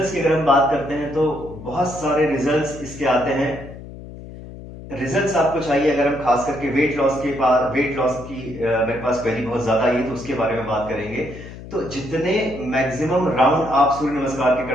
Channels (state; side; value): noise; left; hum, 14 dB below the sound